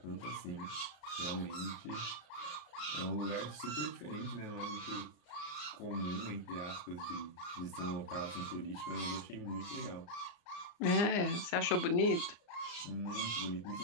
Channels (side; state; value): right; late; 34 ms